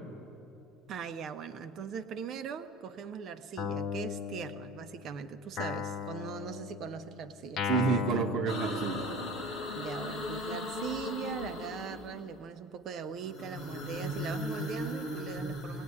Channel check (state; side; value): normal; both; correlation 0.39